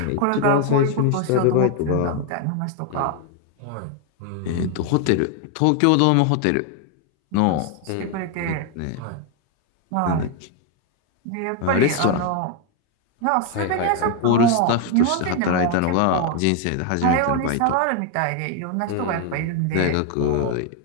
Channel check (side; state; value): both; different; correlation 0.01